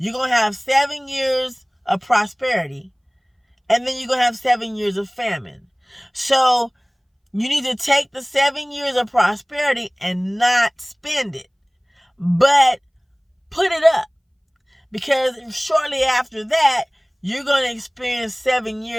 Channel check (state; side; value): identical; both; correlation 1.00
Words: going to have 7 years of prosperity. And then you're going to have 7 years of famine. So you need to take the 7 years of prosperity and not spend it, but put it up. Because shortly after that, you're going to experience 7